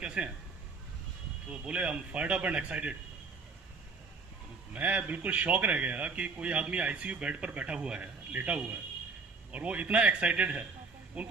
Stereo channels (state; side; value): quieter; left; 4.4 dB